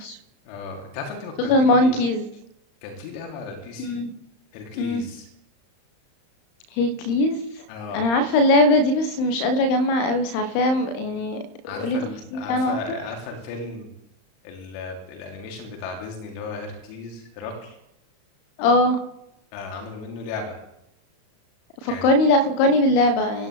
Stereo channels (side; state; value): right; late; 35 ms